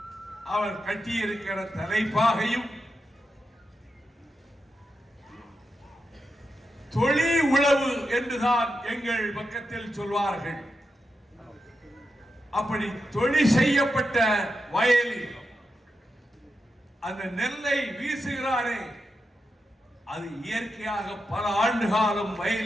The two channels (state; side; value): normal; both; correlation 0.87